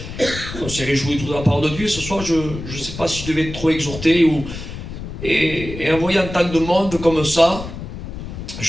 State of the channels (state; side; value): noise; left; rumble, 10 dB below the sound